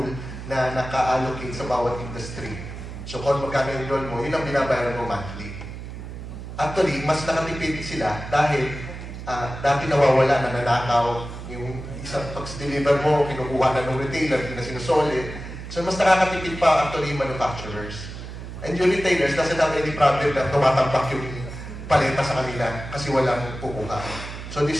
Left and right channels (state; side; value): noise; right; hum, 10 dB below the sound